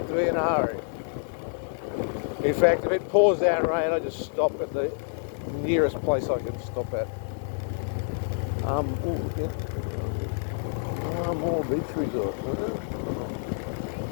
to be in a hurry. In fact, if it pours down rain, I just stop at the nearest place I can stop at. More beach resorts.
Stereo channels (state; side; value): silent; right; 60 dB below the other